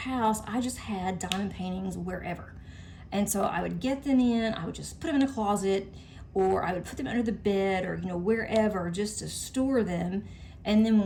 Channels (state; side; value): identical; both; correlation 1.00